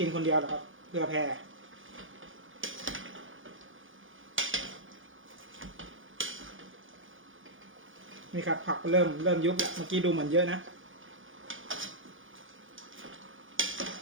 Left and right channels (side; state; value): left; late; 0.58 ms